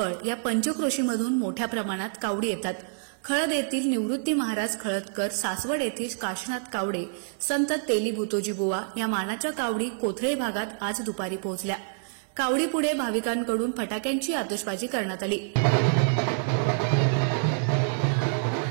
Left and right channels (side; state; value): left; silent; 60 dB below the other